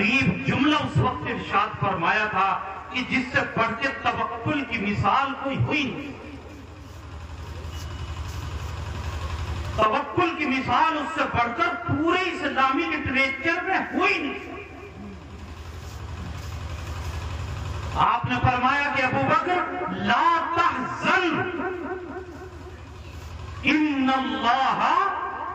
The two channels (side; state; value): both; identical; correlation 1.00